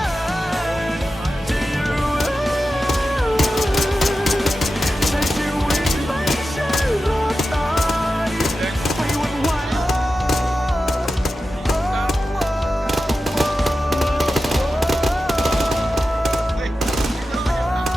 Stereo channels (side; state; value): both; normal; correlation 0.93